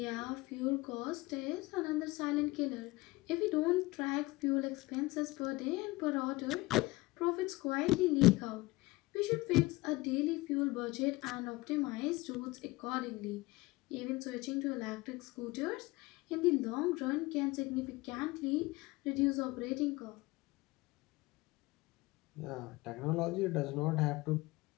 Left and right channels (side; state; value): right; quieter; 21.2 dB